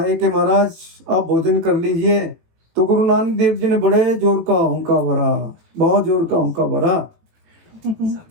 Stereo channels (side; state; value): left; late; 18 ms